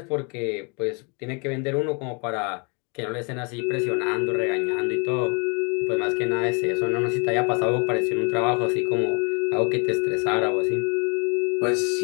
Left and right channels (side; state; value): right; quieter; 33.4 dB